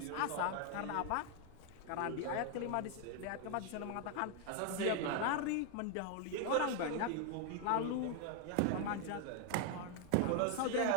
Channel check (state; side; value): different; both; correlation 0.00